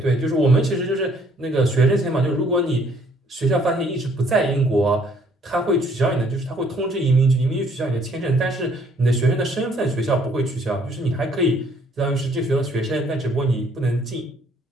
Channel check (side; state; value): both; normal; correlation 0.63